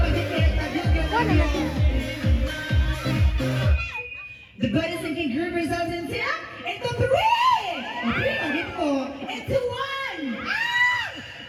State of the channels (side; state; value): both; identical; correlation 1.00